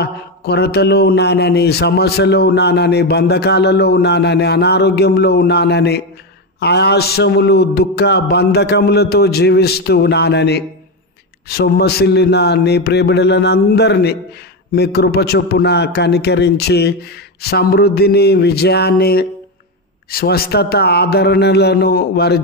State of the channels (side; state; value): both; normal; correlation 0.12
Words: కొరతలో ఉన్నానని, సమస్యలో ఉన్నానని, బంధకాలలో ఉన్నానని, అనారోగ్యంలో ఉన్నానని, ఆయాసములు, దుఃఖ బంధకములతో జీవిస్తూ ఉన్నానని సొమ్మసిల్లిన నీ ప్రియబిడ్డలందరినీ మీ కృప చొప్పున కనికరించి సమృద్ధిని, విజయాన్ని, స్వస్థత, ఆదరణలను వారి